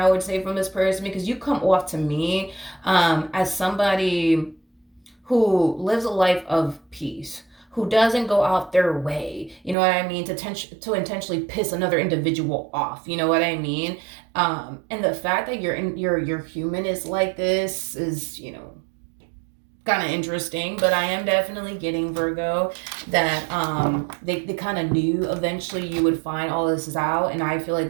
I would say, from this person, because you come off to me as somebody who lives a life of peace, who doesn't go out their way, you know what I mean, to intentionally piss another individual off, you know what I mean. And the fact that your human is like this is, kind of interesting, but I am definitely getting, Virgo, that they kind of knew eventually you would find all this out, and I feel like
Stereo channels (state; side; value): drops out; left; at 9.8 s